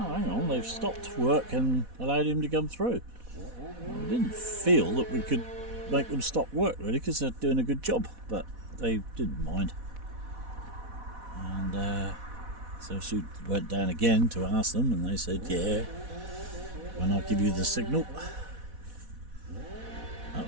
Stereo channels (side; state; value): left; late; 4.1 ms